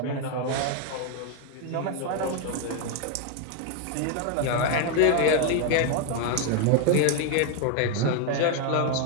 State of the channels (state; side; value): different; both; correlation 0.01